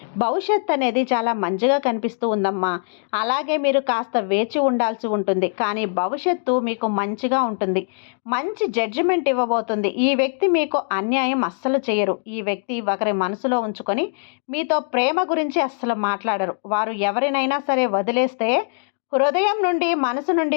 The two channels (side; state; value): right; silent; digital silence